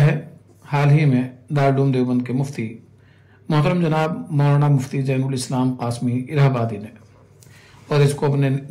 ہے حال ہی میں دارالعلوم دیوبند کے مفتی محترم جناب مولانا مفتی زین الاسلام قاسمی الہ آبادی نے، اور اس کو اپنے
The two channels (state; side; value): identical; both; correlation 1.00